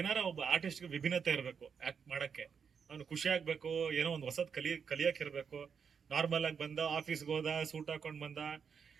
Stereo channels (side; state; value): left; quieter; 6.5 dB